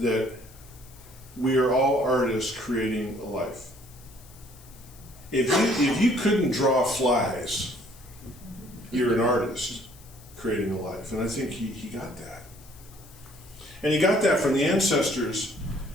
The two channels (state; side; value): noise; left; hiss, 23 dB below the sound